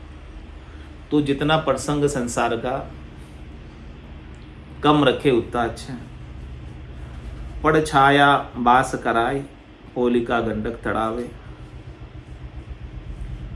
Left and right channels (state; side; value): identical; both; correlation 1.00